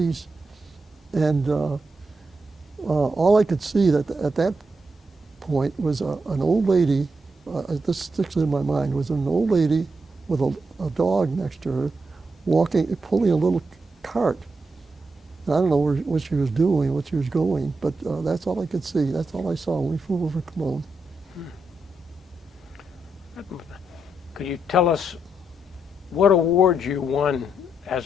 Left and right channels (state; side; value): normal; both; correlation 0.83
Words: and all I could see at that point was an old lady. This sticks in my mind. Was an old lady with a dog next to her, pulling a little cart. And I don't know what she was doing, what she was going, but that's all I could see. That's all I saw when we flew over Cologne. Could you tell us what awards you won